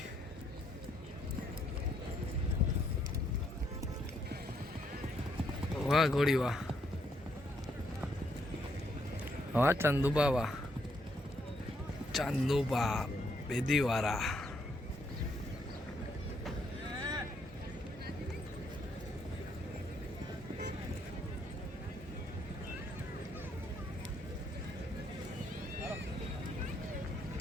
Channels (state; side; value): normal; both; correlation 0.73